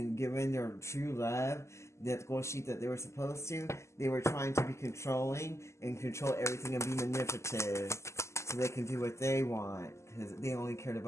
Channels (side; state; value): right; late; 0.13 ms